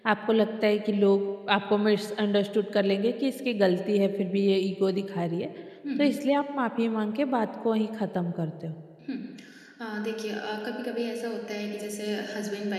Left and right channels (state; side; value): identical; both; correlation 1.00